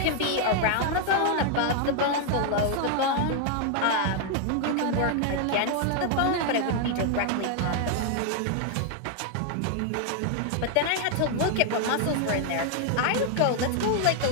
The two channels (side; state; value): both; different; correlation 0.00